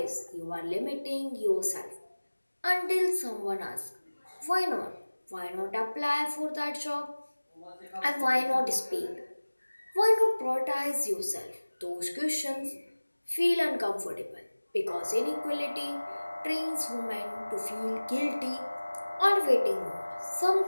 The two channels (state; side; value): inverted; both; correlation -1.00